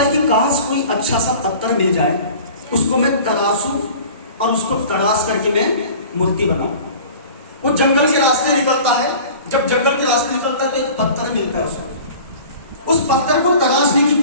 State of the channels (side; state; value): both; inverted; correlation -0.42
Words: कि काश कोई अच्छा सा पत्थर मिल जाए, उसको मैं तराशूं और उसको तराश करके मैं मूर्ति बनाऊं। वो जंगल के रास्ते निकलता है, जब जंगल के रास्ते निकलता है तो एक पत्थर मिलता है उसको। उस पत्थर को तराशने की